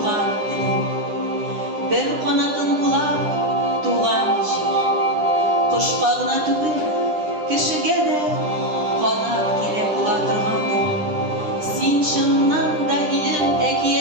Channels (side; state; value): left; late; 10 ms